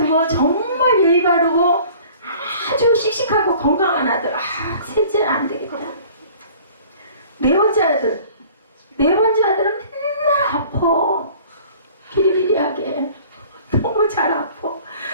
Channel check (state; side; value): inverted; both; correlation -0.49